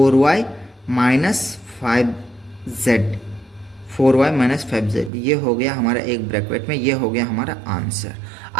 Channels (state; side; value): drops out; left; at 5.1 s